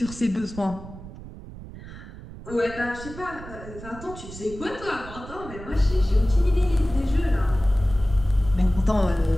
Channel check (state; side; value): noise; right; rumble, 14 dB below the sound